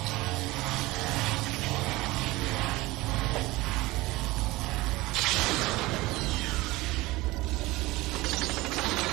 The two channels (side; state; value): left; quieter; 20.2 dB